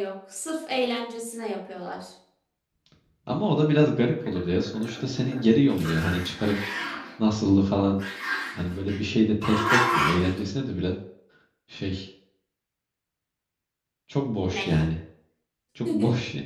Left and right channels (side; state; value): both; identical; correlation 1.00